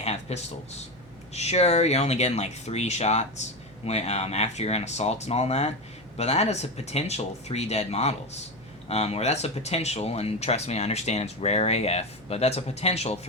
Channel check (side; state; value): right; noise; hum, 25 dB below the sound